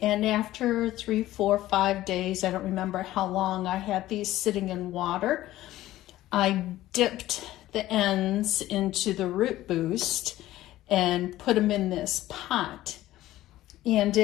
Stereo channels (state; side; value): quieter; right; 15.2 dB